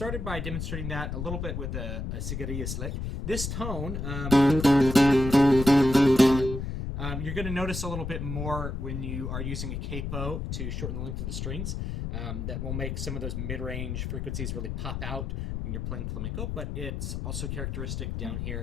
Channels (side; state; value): left; noise; rumble, 4 dB below the sound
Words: by demonstrating that a little bit with a cigarillas lick. This tone, you're going to notice a little bit more when you are using a capo to shorten the length of the strings. That will make some of those mid-range frequencies really pop out when you're playing flamenco, but it's also characteristic down